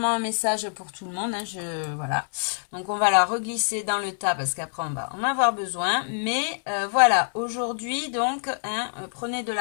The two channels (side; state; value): right; silent; 61 dB below the other